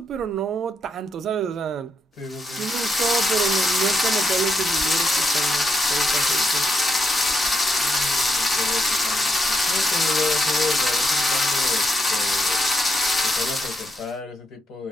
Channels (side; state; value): both; normal; correlation 0.79